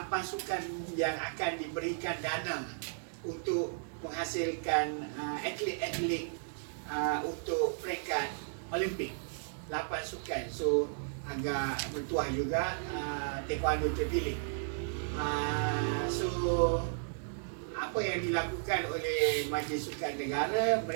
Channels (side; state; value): left; silent; digital silence